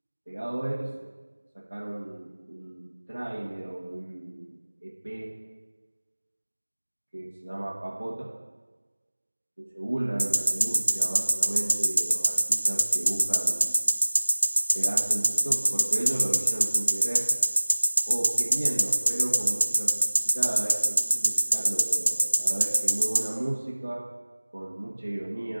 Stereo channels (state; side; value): inverted; both; correlation -1.00